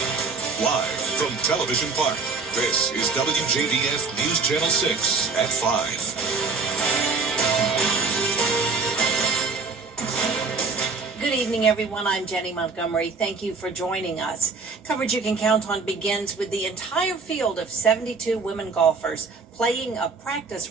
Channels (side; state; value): left; quieter; 4.5 dB